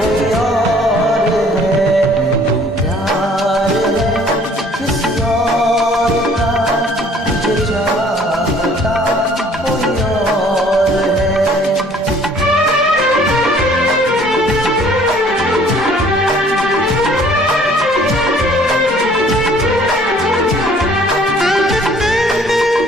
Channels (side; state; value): both; normal; correlation 0.56